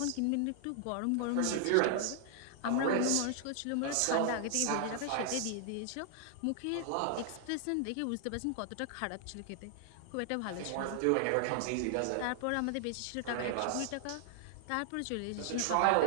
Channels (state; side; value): different; both; correlation 0.00